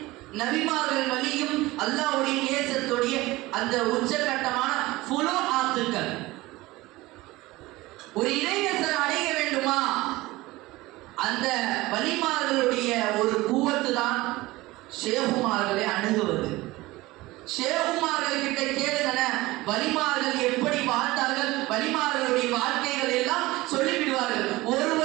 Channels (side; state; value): left; quieter; 19.7 dB